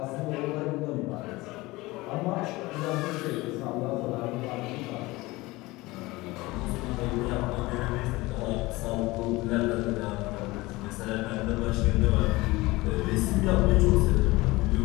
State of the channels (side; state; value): right; quieter; 21.0 dB